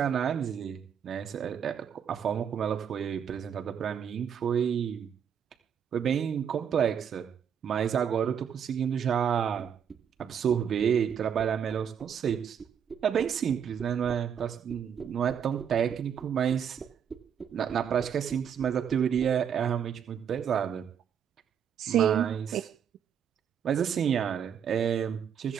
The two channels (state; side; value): quieter; left; 8.1 dB